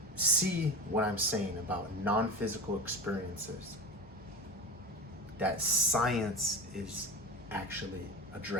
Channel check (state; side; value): normal; both; correlation 0.26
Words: see what I'm saying about non-physical experiences that science is actually